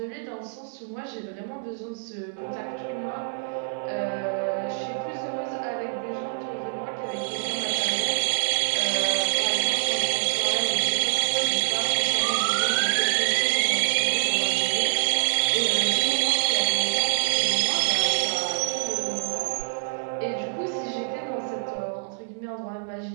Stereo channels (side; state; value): left; silent; 61 dB below the other